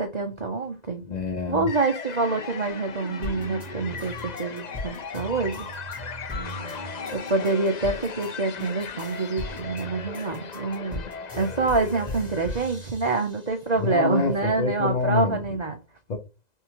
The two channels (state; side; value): late; right; 2.0 ms